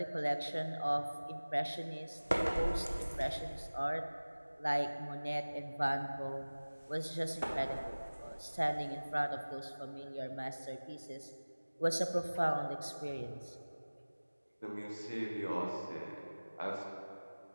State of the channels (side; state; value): both; inverted; correlation -1.00